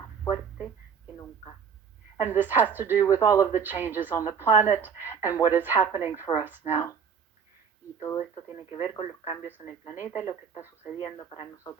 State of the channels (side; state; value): left; quieter; 6.6 dB